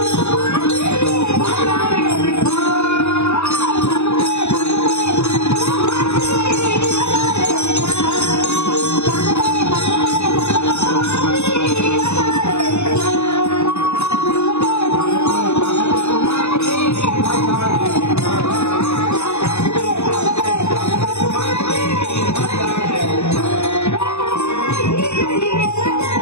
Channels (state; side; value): late; right; 0.81 ms